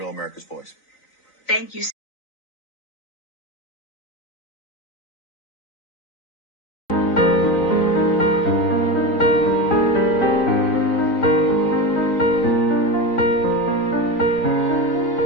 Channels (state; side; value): late; right; 3.9 ms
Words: America's Voice. Thank you.